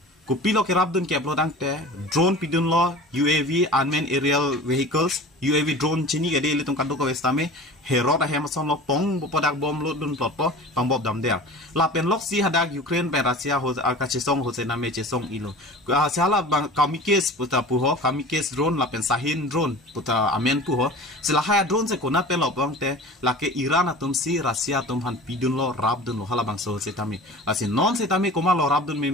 kupilo ke rabdun ke plodang te drone pidun lo UAV unmanned aerial vehicles UAV drone chini gade le tum kadu ko westame herot a hemason lo pong podak bom lo dun plotpo pang bob dam der lapen lok si hadak Ukraine pe Rusia ho ka chesong hose name chesong ilo sala bang kamikes puta puho kamikes drone lapen sahin drone puta amen puho selahaya drone se kona pe lo bang te lake Iran atum si Rusia tum han pidun lo rabdun lo hala bang so setami asin non setami koma lo rabdun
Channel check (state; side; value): normal; both; correlation 0.38